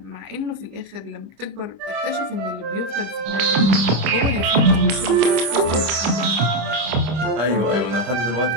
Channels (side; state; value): left; late; 25 ms